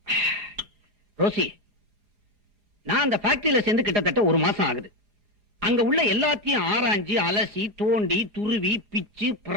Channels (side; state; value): left; late; 4.4 ms